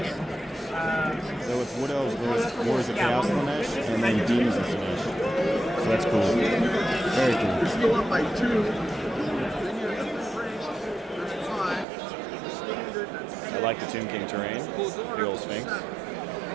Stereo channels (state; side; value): drops out; left; at 11.9 s